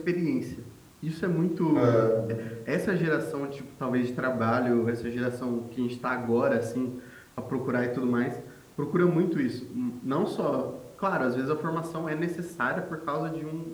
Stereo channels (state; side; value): identical; both; correlation 1.00